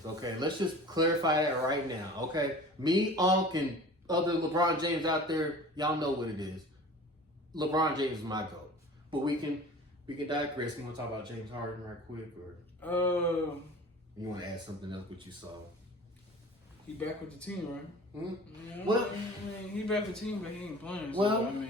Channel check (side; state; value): both; normal; correlation 0.41